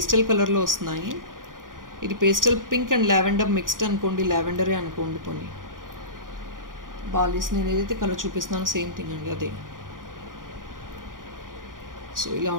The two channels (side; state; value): left; late; 0.90 ms